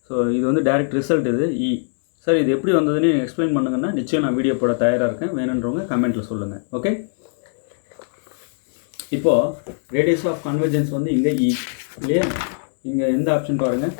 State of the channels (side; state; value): right; silent; digital silence